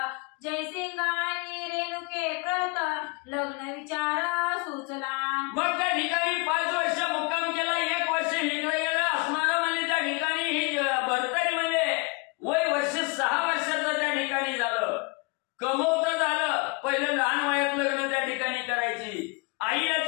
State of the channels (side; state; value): right; quieter; 29.3 dB